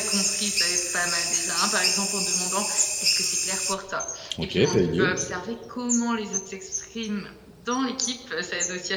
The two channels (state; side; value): identical; both; correlation 1.00